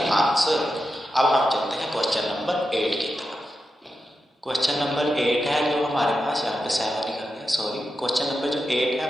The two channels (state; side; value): normal; both; correlation 0.89